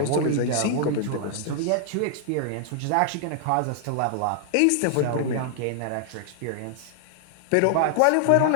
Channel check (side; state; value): both; different; correlation 0.00